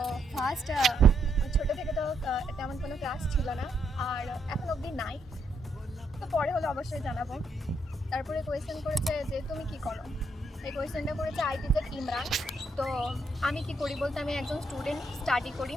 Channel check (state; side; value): normal; both; correlation 0.76